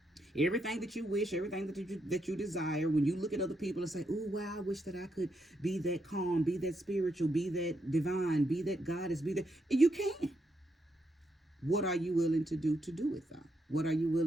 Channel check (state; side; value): normal; both; correlation 0.80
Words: Everything that you wish, everything that you desire, when you look at other people and say, "Oh wow, I wish that I could be that calm, be that spiritual, be that divine, be that goddess, be that," you can. What are you willing to do it though? What are you